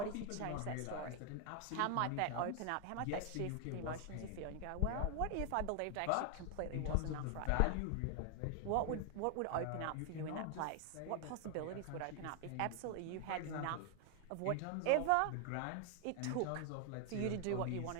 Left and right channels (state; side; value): different; both; correlation 0.01